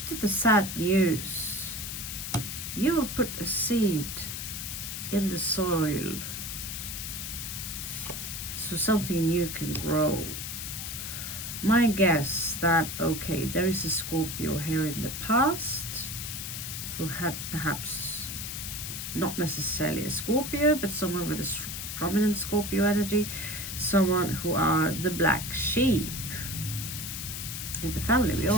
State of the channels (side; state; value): left; noise; hiss, 6 dB below the sound